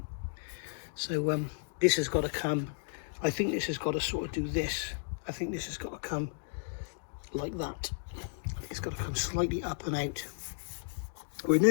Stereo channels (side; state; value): right; silent; digital silence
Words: So this has got to come, I think this has got to sort of do this. I think this has got to come like that. I think it's got to come slightly up and out. We're